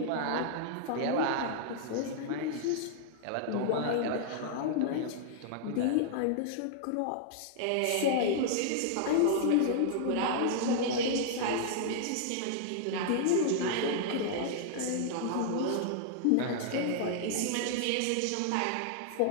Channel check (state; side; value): different; both; correlation -0.01